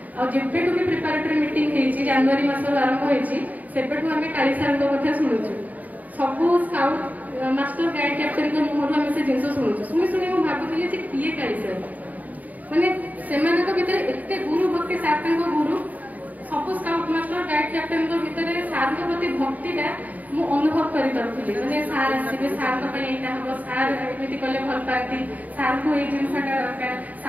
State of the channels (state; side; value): late; left; 0.076 ms